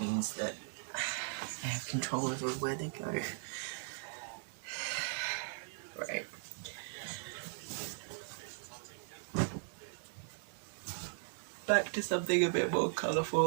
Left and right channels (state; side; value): silent; left; 52 dB below the other